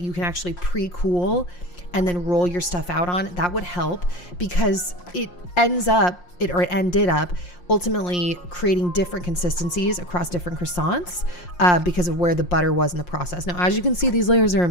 can actually pre-cool and then roll your stuff out on, that would help, because it ended up ultimately creating different consistencies across different croissants because of where the butter was in the process. Now, as you can see, these layers are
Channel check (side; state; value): right; late; 5.6 ms